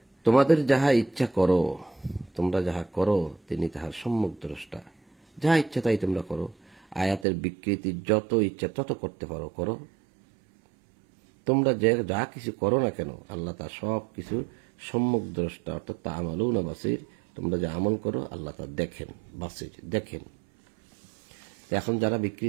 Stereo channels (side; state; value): left; drops out; at 7.2 s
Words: তোমাদের যাহা ইচ্ছা করো, তোমরা যাহা করো তিনি তাহার সম্যক দ্রষ্টা, যাহা ইচ্ছা তাই তোমরা করো। আয়াতের বিকৃতি যত ইচ্ছা তত করতে পারো করো, তোমরা যা কিছু করো না কেন আল্লাহ তা সব কিছু সম্যক দ্রষ্টা, অর্থাৎ তা আমালুনা বাসির, তোমরা যা আমল করো আল্লাহ তা দেখেন, বাসির দেখেন। এখন যারা